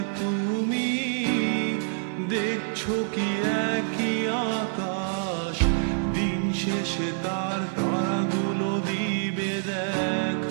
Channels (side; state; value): left; silent; digital silence